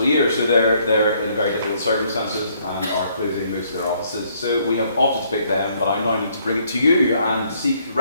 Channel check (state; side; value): inverted; both; correlation -0.67